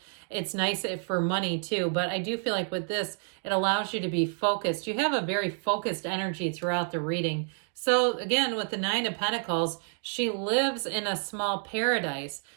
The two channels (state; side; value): silent; left; 55 dB below the other